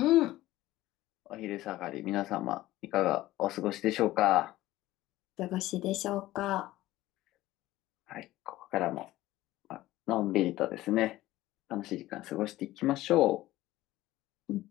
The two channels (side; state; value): right; quieter; 16.2 dB